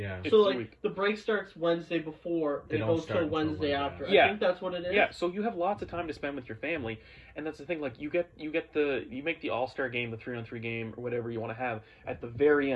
It's So a like week. the break starts Wednesday before They and it don't goes start till until Wednesday Monday. after. Yeah. I think that's what it is. Yeah, so you have lots of time to spend with your family, and that's the thing. Like you make the All-Star game, the 3-on-3 game, or whatever you want to have at the very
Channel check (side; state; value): both; identical; correlation 1.00